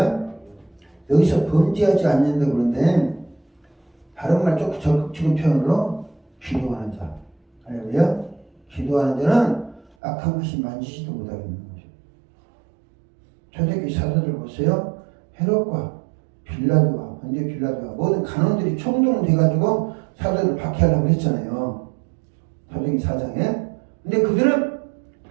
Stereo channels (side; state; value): left; drops out; at 9.9 s